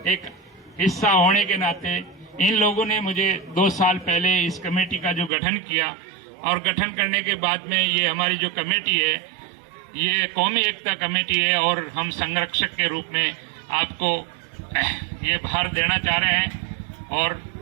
एक हिस्सा होने के नाते, इन लोगों ने मुझे 2 साल पहले इस कमेटी का जो गठन किया और गठन करने के बाद में ये हमारी जो कमेटी है ये कौमी एकता कमेटी है और हम संरक्षक के रूप में आपको ये भार देना चाह रहे हैं। और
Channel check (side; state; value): left; drops out; at 5.3 s